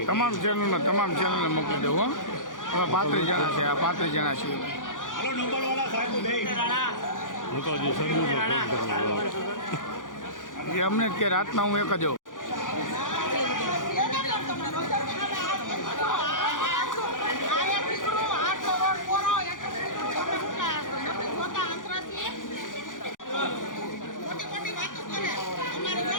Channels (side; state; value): right; late; 0.88 ms